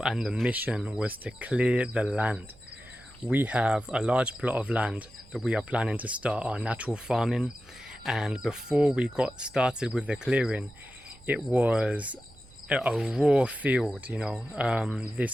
and the mission was to clear the land. We have a large plot of land that we are planning to start our natural farming, and before we got started with the clearing, it was a raw field.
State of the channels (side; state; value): right; noise; hum, 27 dB below the sound